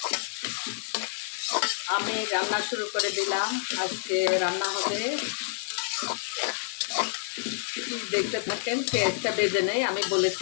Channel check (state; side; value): silent; right; 59 dB below the other